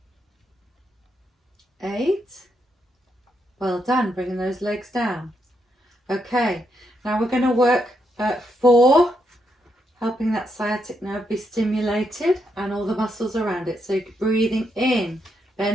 7. 8. Well done, bringing those legs down. Okay, now we're going to work at 4, helping that sciatic nerve be stimulated and all the muscles around it. So breathing in,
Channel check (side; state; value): both; normal; correlation 0.80